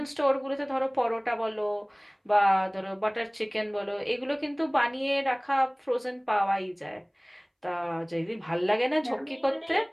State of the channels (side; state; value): both; identical; correlation 1.00